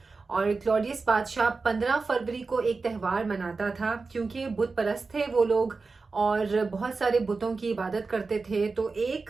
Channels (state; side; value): quieter; left; 4.2 dB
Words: और क्लॉडियस बादशाह 15 फरवरी को एक त्यौहार मनाता था क्योंकि बुत परस्त थे वो लोग और बहुत सारे बुतों की इबादत करते थे। तो